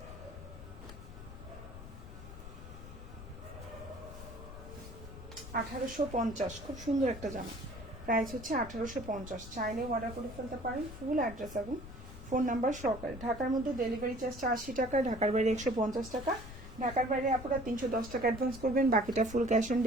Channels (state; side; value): noise; left; rumble, 13 dB below the sound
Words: 1850, খুব সুন্দর একটা জামা। প্রাইস হচ্ছে 1850। চাইলে অর্ডার করে ফেলতে পারেন। ফুল অ্যাড্রেস এবং ফোন নাম্বার সহকারে। ঢাকার মধ্যে ডেলিভারি চার্জটা 80 টাকা, ঢাকার বাইরে 150 টাকা। ঢাকার বাইরে আপনারা 310 টাকা অ্যাডভান্স করবেন, বাকিটা ফুল ক্যাশ অন